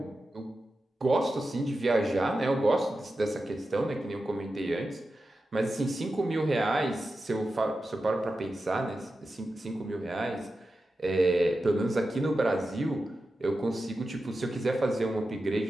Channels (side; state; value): both; normal; correlation 0.91